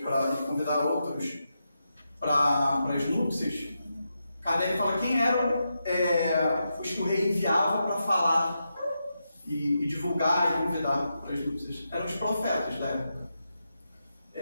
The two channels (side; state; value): both; inverted; correlation -0.86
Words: convidar outros para as núpcias, Kardec fala quem eram os que o rei enviava para falar e divulgar e convidar para as núpcias. Eram os profetas da época.